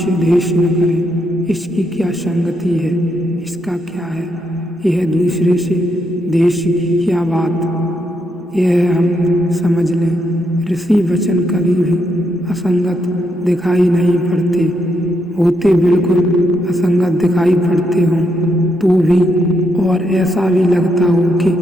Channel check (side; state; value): both; normal; correlation 0.79